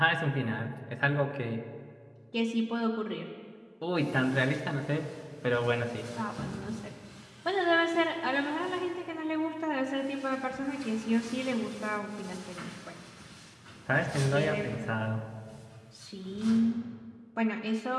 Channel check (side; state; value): both; identical; correlation 1.00